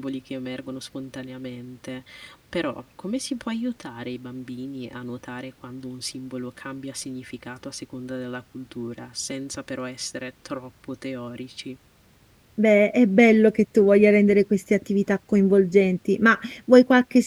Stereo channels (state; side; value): identical; both; correlation 1.00